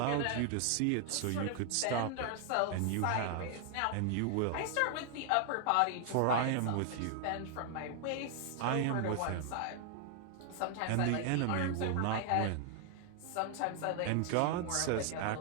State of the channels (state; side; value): different; both; correlation 0.00